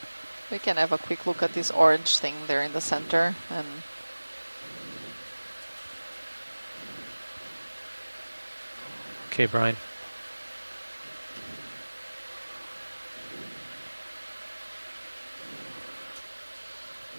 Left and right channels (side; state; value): both; inverted; correlation -1.00